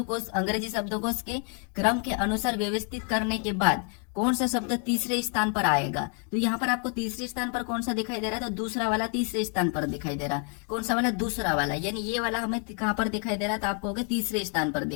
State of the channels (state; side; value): quieter; right; 38.4 dB